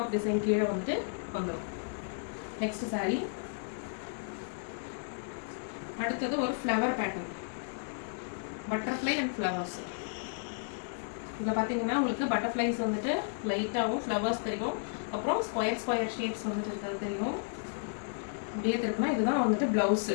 டிசைன் கீழே வந்துட்டு வந்துடும். நெக்ஸ்ட் சாரீ. அடுத்தது ஒரு flower pattern, butterfly and flowers. இதில் பார்த்தீங்கன்னா உங்களுக்கு பட்டர்ஃப்ளைஸ் வந்துட்டு லைட்டாகவும் ஃப்ளவர்ஸ் தெரியும். அப்புறம் ஸ்கொயர் ஷேப்ஸ் வந்துட்டு இருக்கிறது தெரியும். அப்படியே இருக்குன்னா இதுதான் வந்துட்டு ப்ளவுஸ்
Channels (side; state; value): right; silent; 56 dB below the other